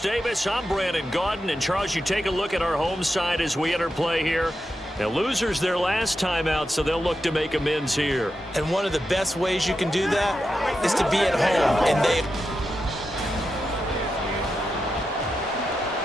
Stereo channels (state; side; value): normal; both; correlation 0.88